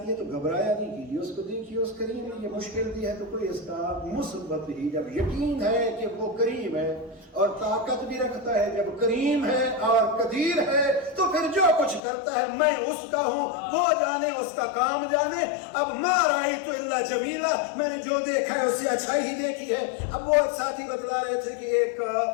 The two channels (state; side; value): drops out; right; at 12.0 s